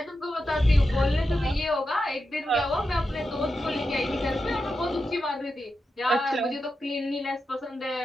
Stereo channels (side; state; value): both; normal; correlation 0.89